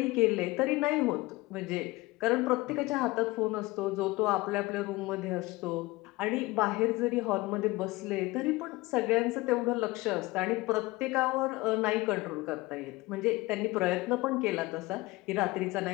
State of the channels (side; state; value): right; quieter; 21.2 dB